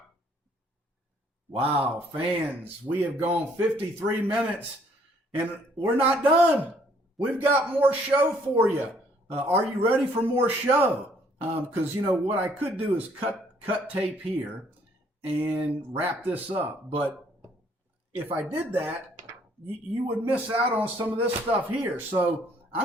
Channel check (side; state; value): both; normal; correlation 0.64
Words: Wow, fans, we have gone 53 minutes, and we're not done. We've got more show for you. Are you ready for more show? Because, what I could do is cut tape here and wrap this up. But if I did that, you would miss out on some of this stuff here. So